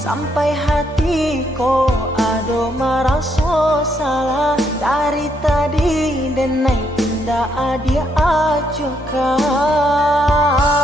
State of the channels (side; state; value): both; normal; correlation 0.74